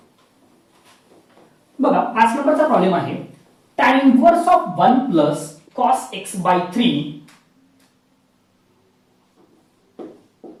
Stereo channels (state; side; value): identical; both; correlation 1.00